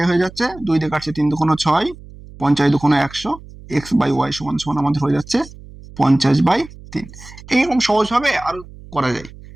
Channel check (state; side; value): noise; right; hum, 18 dB below the sound